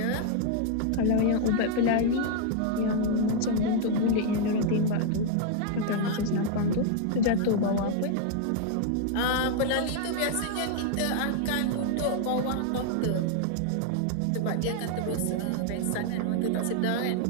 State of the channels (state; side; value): different; both; correlation 0.00